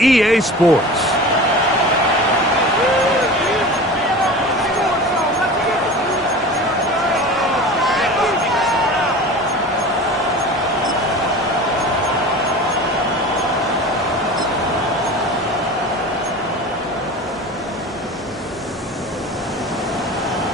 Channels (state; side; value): normal; both; correlation 0.35